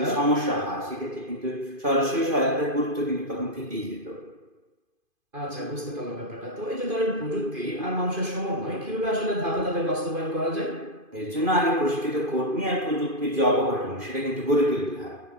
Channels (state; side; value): late; left; 2.5 ms